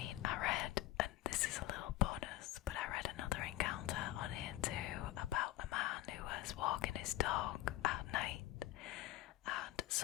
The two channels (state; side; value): quieter; right; 15.2 dB